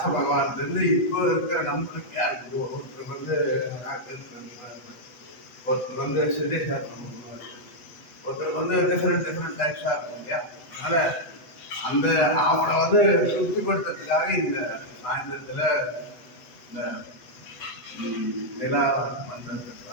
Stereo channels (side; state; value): right; late; 8.3 ms